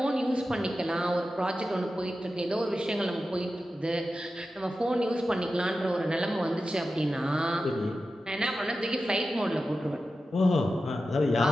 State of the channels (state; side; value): normal; both; correlation 0.92